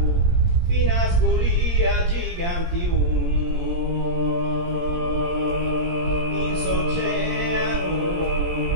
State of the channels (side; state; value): left; late; 17 ms